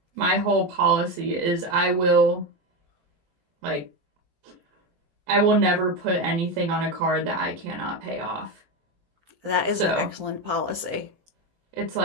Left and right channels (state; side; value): late; left; 17 ms